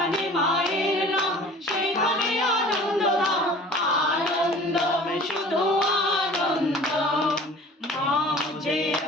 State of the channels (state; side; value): normal; both; correlation 0.45